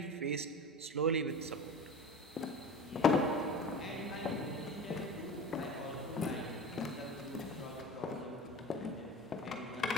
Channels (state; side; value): normal; both; correlation 0.35